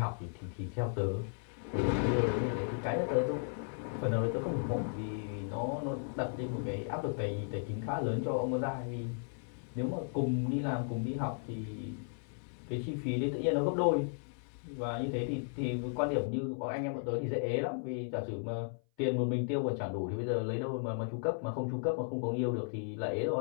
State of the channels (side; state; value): right; silent; 54 dB below the other